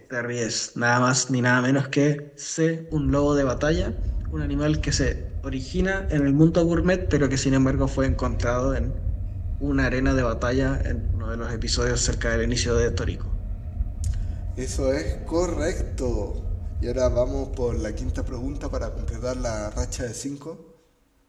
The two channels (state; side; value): identical; both; correlation 1.00